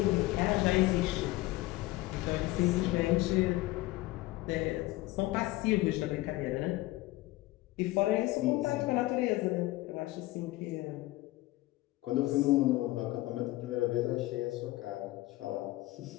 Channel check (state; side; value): quieter; right; 18.6 dB